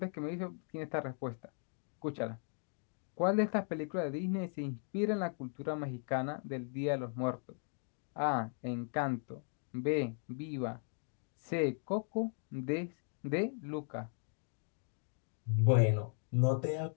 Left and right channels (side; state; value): right; silent; 53 dB below the other